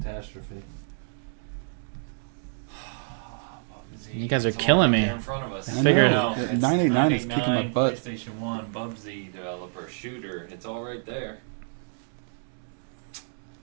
Bubsy. You guys are killing me. There in front of us. I figured It's 989 butt. PlayStation 1 Bubsy developer shooter. It's all right there.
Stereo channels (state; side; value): silent; left; digital silence